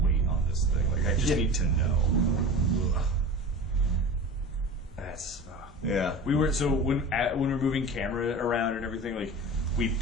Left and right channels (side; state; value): both; normal; correlation 0.33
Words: on this thing. I just need to know. That's Yeah. We were so when we're moving camera around and everything, like we